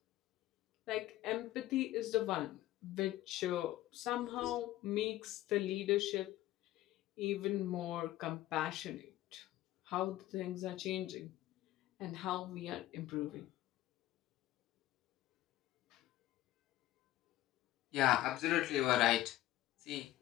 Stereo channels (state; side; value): quieter; right; 15.2 dB